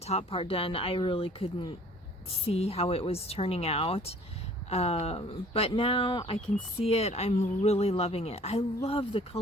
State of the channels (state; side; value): normal; both; correlation 0.52